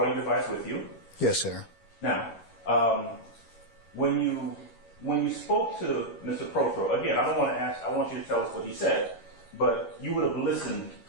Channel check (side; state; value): right; late; 11 ms